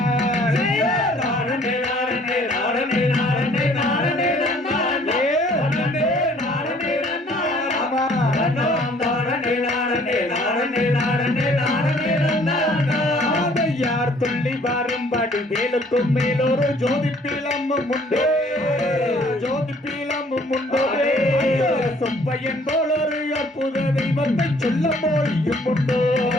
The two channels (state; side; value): normal; both; correlation 0.58